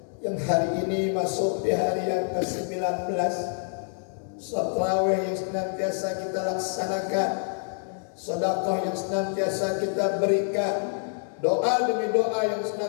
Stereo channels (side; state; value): right; silent; digital silence